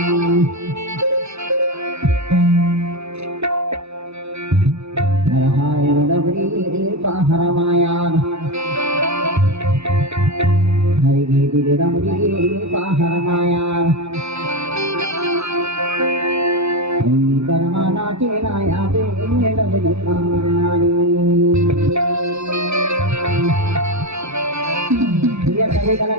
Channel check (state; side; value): late; left; 0.80 ms